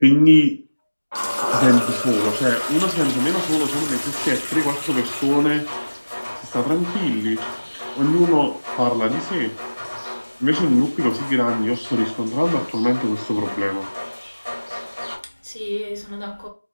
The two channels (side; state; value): both; inverted; correlation -1.00